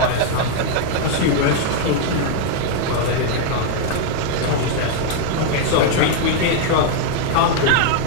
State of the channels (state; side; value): different; both; correlation 0.00